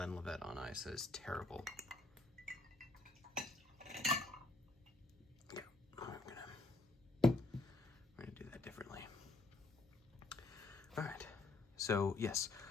on ice. That is terrible. Yeah, we're gonna do that differently. All right. So yes,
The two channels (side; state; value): right; quieter; 3.1 dB